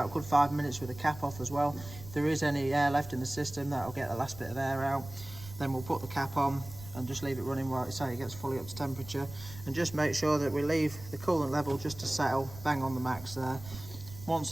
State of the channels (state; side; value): noise; right; rumble, 16 dB below the sound